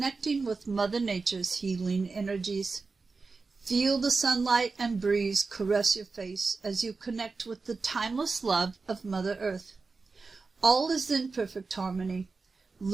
with Mother Nature's healing energies. Feel the sunlight and breeze caress your face as you connect with the timeless love of Mother Earth. All is in perfect harmony.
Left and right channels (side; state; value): left; quieter; 4.2 dB